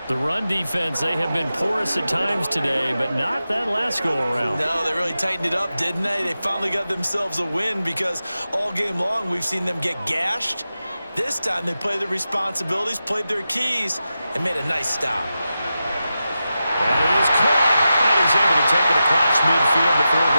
The run defense, they have been porous at times today, but not that last go-around. No, they really tightened it up, didn't they? They finally got themselves a win, because all game long we've seen them get gashed. This time they played their responsibilities, played their keys, and made a nice stop. That is caught. And he's able to take it across midfield before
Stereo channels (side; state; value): both; inverted; correlation -0.91